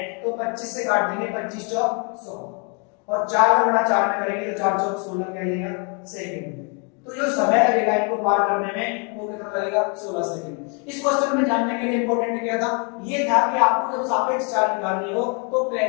तो 25 से काट देंगे, 25 चौक 100, और 4 का गुणा 4 में करेंगे तो 4 चौक 16 क्या आएगा सेकंड। तो जो समय लगेगा इनको पार करने में वो कितना लगेगा, 16 सेकंड। इस क्वेश्चन में जानने के लिए इंपॉर्टेंट क्या था, ये था कि आपको जब सापेक्ष चाल निकालनी हो तो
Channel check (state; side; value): quieter; right; 36.1 dB